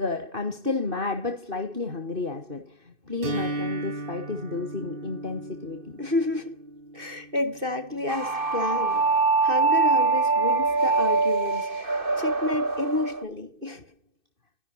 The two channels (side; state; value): left; late; 2.6 ms